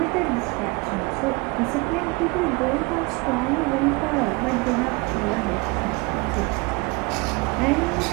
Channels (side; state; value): left; quieter; 27.0 dB